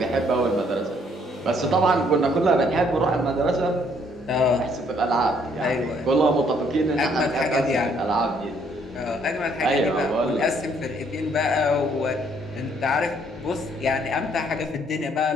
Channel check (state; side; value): normal; both; correlation 0.66